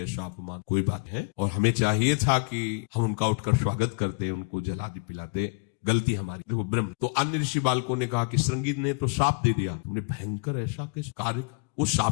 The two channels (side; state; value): right; quieter; 33.6 dB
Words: अपमान, कोई बात है, और हमें चाहिए था कि हम उनका उठकर स्वागत करते, उनको जला भी पिलाते, गलती हमारी। देखो ब्रह्म। तो अन्य ऋषि बालकों ने कहा कि श्रृंगी ने तो शाप दे दिया, तुमने भयंकर ऐसा किस कार्य, वो